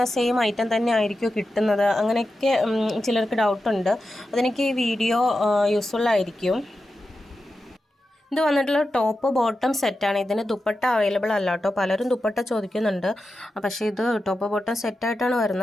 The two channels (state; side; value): normal; both; correlation 0.90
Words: സെയിം ഐറ്റം തന്നെ ആയിരിക്കുമോ കിട്ടുന്നത്, അങ്ങനെയൊക്കെ ചിലർക്ക് ഡൗട്ടുണ്ട്. അതെനിക്ക് ഈ വീഡിയോ യൂസ്ഫുള്ളായിരിക്കും. ഇത് വന്നിട്ടുള്ള ടോപ്പ് ബോട്ടം സെറ്റാണ്. ഇതിന് ദുപ്പട്ട അവൈലബിൾ അല്ല കേട്ടോ. പലരും ദുപ്പട്ട ചോദിക്കുന്നുണ്ട്, പക്ഷേ ഇത് ടോപ്പ് ബോട്ടം സെറ്റായിട്ടാണ്